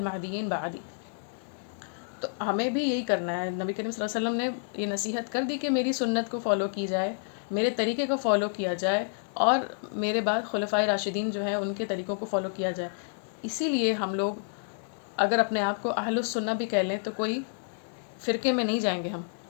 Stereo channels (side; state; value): right; silent; 58 dB below the other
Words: بعدی. تو ہمیں بھی یہی کرنا ہے. نبی کریم صلی اللہ علیہ وسلم نے یہ نصیحت کر دی کہ میری سنت کو فالو کی جائے، میرے طریقے کو فالو کیا جائے، اور میرے بعد خلفائے راشدین جو ہیں ان کے طریقوں کو فالو کیا جائے. اسی لیے ہم لوگ اگر اپنے آپ کو اہل السنہ بھی کہہ لیں تو کوئی فرقے میں نہیں جائیں گے.